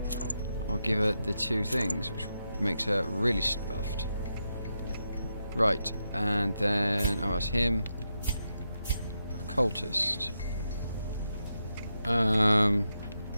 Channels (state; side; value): inverted; both; correlation -0.85